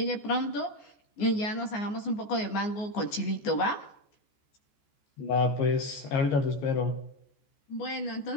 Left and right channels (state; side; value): late; right; 14 ms